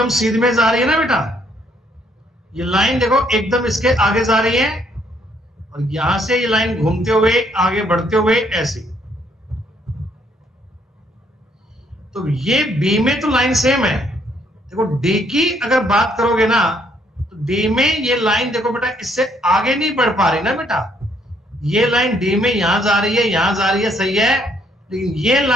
सीध में जा रही है ना बेटा, ये लाइन देखो एकदम इसके आगे जा रही है, और यहां से ये लाइन घूमते हुए आगे बढ़ते हुए ऐसी। तो ये बी में तो लाइन सेम है। देखो डी की अगर बात करोगे ना, तो डी में ये लाइन देखो बेटा इससे आगे नहीं बढ़ पा रही ना बेटा। ये लाइन डी में यहां जा रही है, यहां जा रही है, सही है, लेकिन ये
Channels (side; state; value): both; normal; correlation 0.68